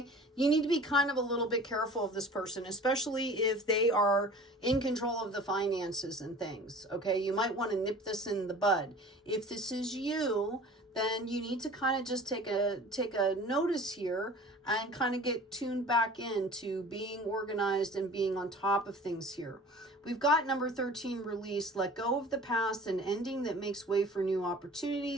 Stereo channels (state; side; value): normal; both; correlation 0.43